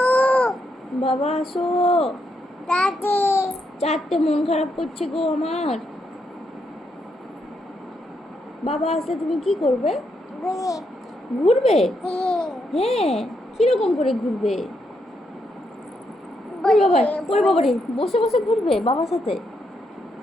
বাবা আসো। 4টে মন খারাপ করছে গো আমার। বাবা আসলে তুমি কি করবে? ঘুরবে? হ্যাঁ। কিরকম করে ঘুরবে? ওরে বাবারে, বসে বসে ঘুরবে বাবার সাথে?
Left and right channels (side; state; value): both; normal; correlation 0.79